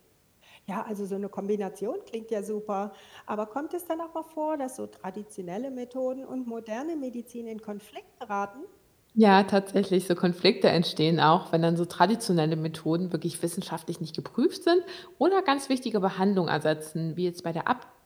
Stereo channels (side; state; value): both; identical; correlation 1.00